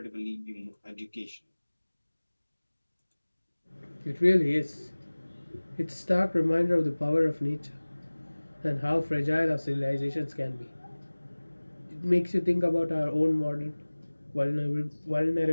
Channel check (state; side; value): inverted; both; correlation -1.00